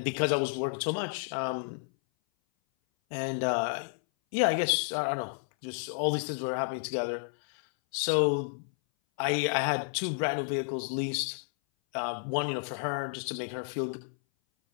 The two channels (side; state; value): right; silent; 57 dB below the other